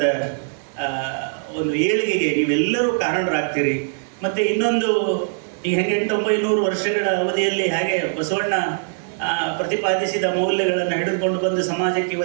ಒಂದು ಏಳಿಗೆಗೆ ನೀವೆಲ್ಲರೂ ಕಾರಣರಾಗ್ತೀರಿ. ಮತ್ತು ಇನ್ನೊಂದು, ಈ 800-900 ವರ್ಷಗಳ ಅವಧಿಯಲ್ಲಿ ಹಾಗೆ ಬಸವಣ್ಣ ಪ್ರತಿಪಾದಿಸಿದ ಮೌಲ್ಯಗಳನ್ನು ಹಿಡಿದುಕೊಂಡು ಬಂದು ಸಮಾಜಕ್ಕೆ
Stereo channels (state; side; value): silent; left; digital silence